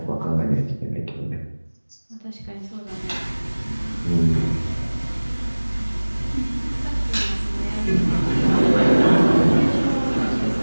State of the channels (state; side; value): inverted; both; correlation -1.00